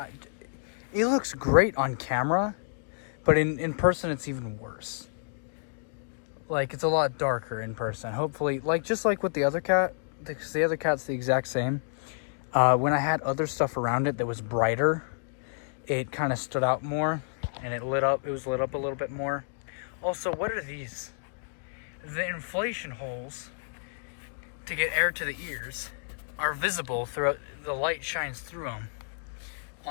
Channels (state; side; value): silent; right; digital silence